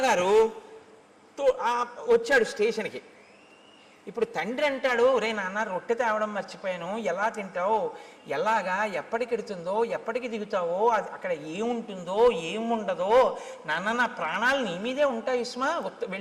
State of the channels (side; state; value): both; identical; correlation 1.00